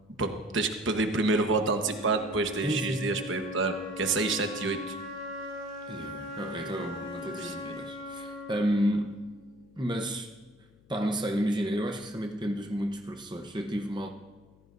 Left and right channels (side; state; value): left; noise; hum, 28 dB below the sound